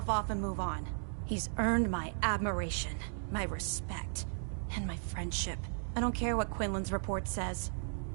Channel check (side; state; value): left; silent; digital silence